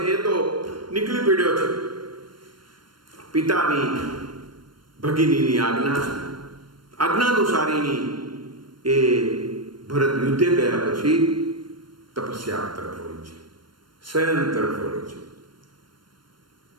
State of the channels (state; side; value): late; left; 0.72 ms